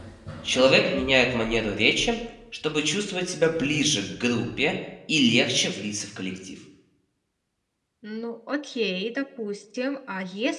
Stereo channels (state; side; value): identical; both; correlation 1.00